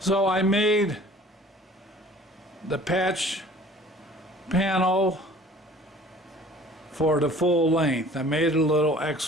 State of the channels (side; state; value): both; normal; correlation 0.49